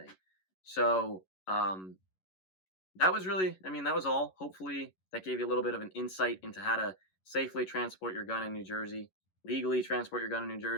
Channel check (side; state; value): right; late; 11 ms